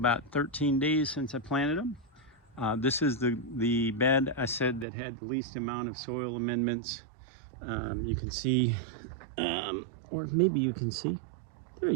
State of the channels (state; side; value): drops out; left; at 4.9 s